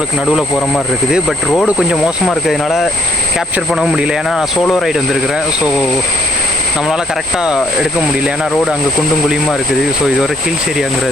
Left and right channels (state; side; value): normal; both; correlation 0.68